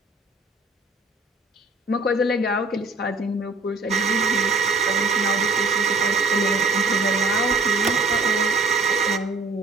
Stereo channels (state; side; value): quieter; left; 3.4 dB